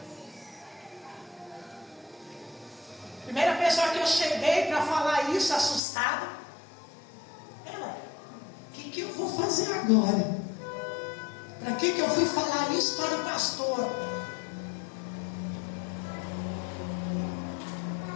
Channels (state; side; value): drops out; right; at 5.8 s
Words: Primeira pessoa que eu cheguei para falar isso, assustada, ela. O que eu vou fazer agora? Para que eu fui falar isso para o pastor?